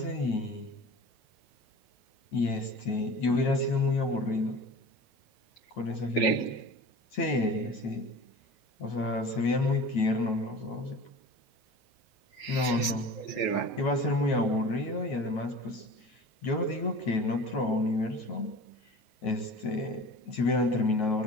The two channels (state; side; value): late; right; 9.3 ms